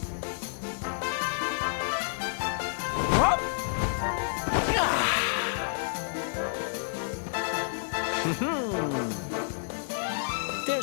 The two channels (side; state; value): right; silent; digital silence